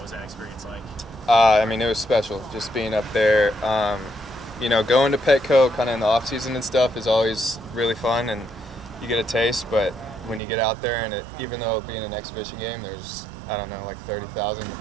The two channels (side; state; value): left; drops out; at 10.4 s